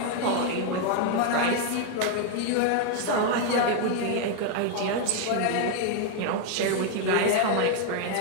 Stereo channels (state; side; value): different; both; correlation 0.00